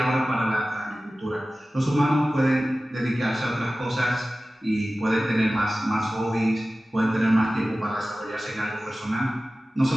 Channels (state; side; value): normal; both; correlation 0.96